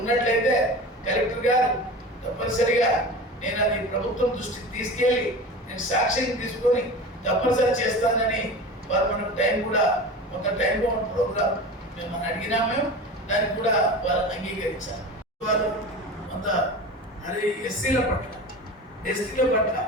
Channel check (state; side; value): normal; both; correlation 0.32